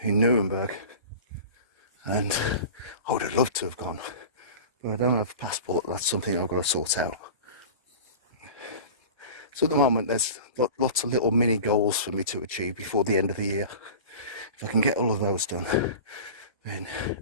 Nuremberg, and I would have loved to have gone, but I don't have a passport. That's something I've got to sort out. So at the moment there's lots of little mini goals for me to achieve before the end of the year. If I can get all of those done, then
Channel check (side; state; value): both; inverted; correlation -0.35